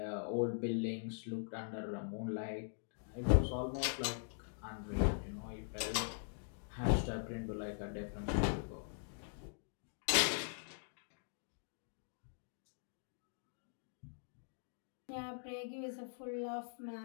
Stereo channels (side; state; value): right; silent; digital silence